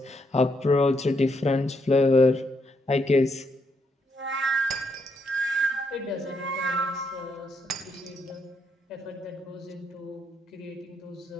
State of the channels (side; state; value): both; normal; correlation 0.77